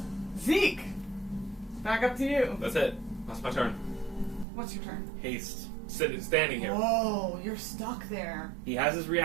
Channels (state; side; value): drops out; left; at 4.5 s